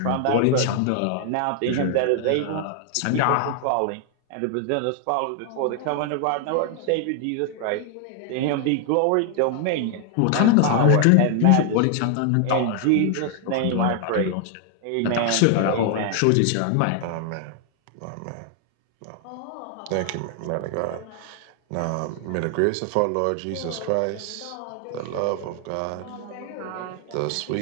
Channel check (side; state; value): both; different; correlation 0.00